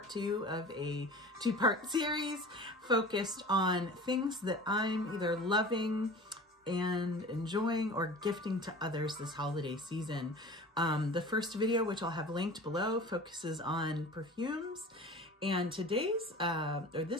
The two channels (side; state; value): both; normal; correlation 0.39